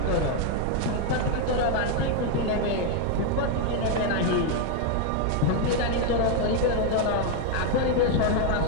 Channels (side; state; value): both; different; correlation 0.01